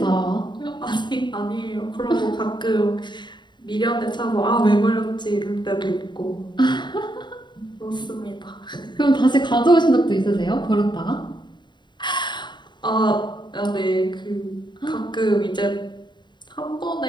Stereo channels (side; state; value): right; late; 0.22 ms